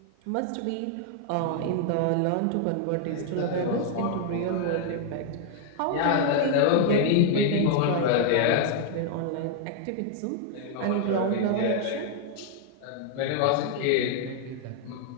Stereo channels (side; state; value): both; different; correlation 0.00